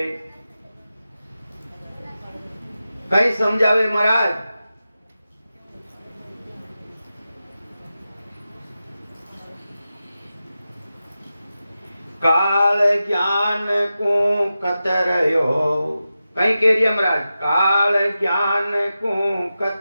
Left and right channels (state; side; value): inverted; both; correlation -0.92